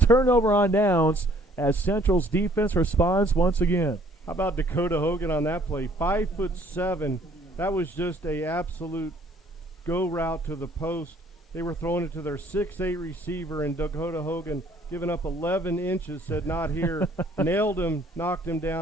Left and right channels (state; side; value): normal; both; correlation 0.60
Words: on downs, as Central's defense responds once again. How about Dakota Hogan on that play? 5'7". That was just a absolute go route to the post. They were throwing it to their 6'8" receiver, and Dakota Hogan, giving up 11 inches, said not here. Nailed him, knocked him